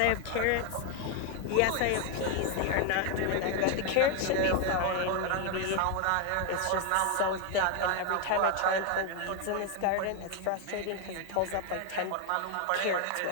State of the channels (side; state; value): both; different; correlation 0.01